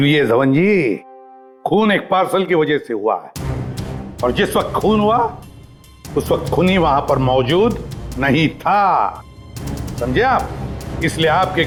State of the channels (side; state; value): both; identical; correlation 1.00